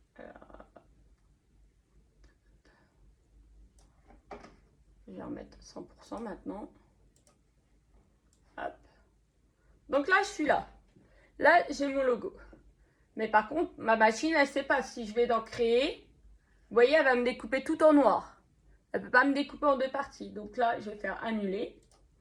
Alors, je vais en mettre 100% maintenant. Hop. Donc là, je suis là. Là, j'ai mon logo. Mais par contre, ma machine, elle ne sait pas. Si je vais dans créer, vous voyez, elle va me découper tout en noir. Elle ne peut pas me découper en 2 parties. Donc là, je vais faire annuler.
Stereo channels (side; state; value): both; identical; correlation 1.00